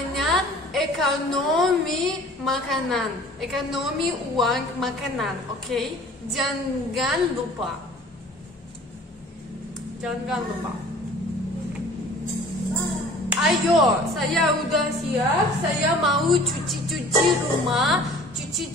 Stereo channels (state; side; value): normal; both; correlation 0.48